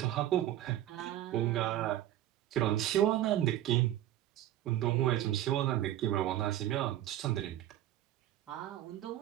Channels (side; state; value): left; quieter; 13.1 dB